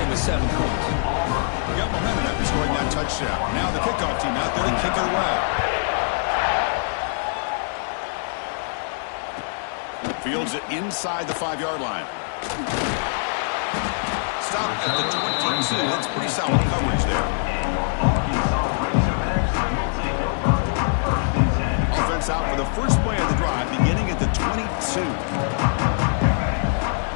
with 7 points. Got momentum after scoring that touchdown. Now the kickoff team out there to kick it away. Fields it inside the 5-yard line. Stop at the 22. That's pretty solid coverage there. Offense out for the first play of the drive, beginning at the 22.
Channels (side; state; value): right; silent; digital silence